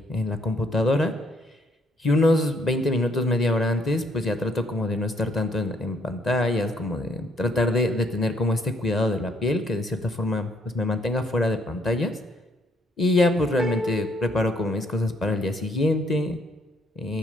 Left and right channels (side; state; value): both; normal; correlation 0.68